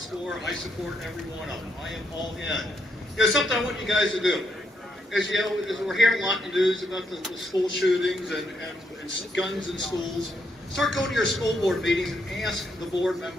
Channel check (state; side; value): normal; both; correlation 0.77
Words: I support every one of them. I am all in. You know, something I want you guys to do. As you know, as we're hearing a lot in the news about the school shootings and guns in schools, start going to your school board meetings and ask the board